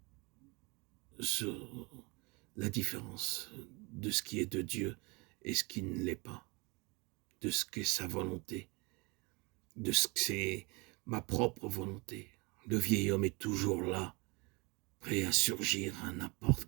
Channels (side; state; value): left; quieter; 27.6 dB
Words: sur la différence de ce qui est de Dieu et ce qui ne l'est pas, de ce qu'est sa volonté, de ce que c'est ma propre volonté. Le vieil homme est toujours là, prêt à surgir à n'importe